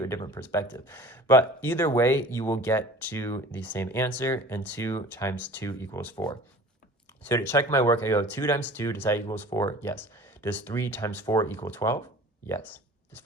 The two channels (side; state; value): both; normal; correlation 0.44